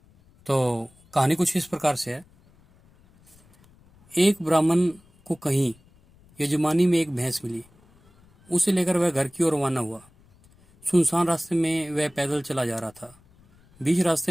तो कहानी कुछ इस प्रकार से है। एक ब्राह्मण को कहीं यजमानी में एक भैंस मिली। उसे लेकर वह घर की ओर रवाना हुआ। सुनसान रास्ते में वह पैदल चला जा रहा था। बीच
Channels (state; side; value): noise; left; rumble, 30 dB below the sound